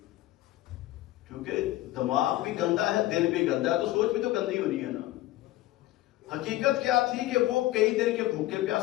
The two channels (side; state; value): right; quieter; 16.2 dB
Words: کیونکہ دماغ بھی گندا ہے، دل بھی گندا ہے، تو سوچ بھی تو گندی ہونی ہے نا۔ حقیقت کیا تھی کہ وہ کئی دن کے بھوکے